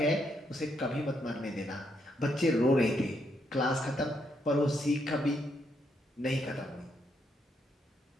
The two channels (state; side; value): normal; both; correlation 0.76